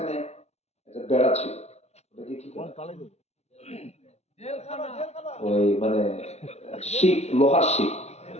একটা বেড়া ছিল। ওটাকে কি বলে? ওই মানে শিক, লোহার শিক।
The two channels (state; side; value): late; right; 0.31 ms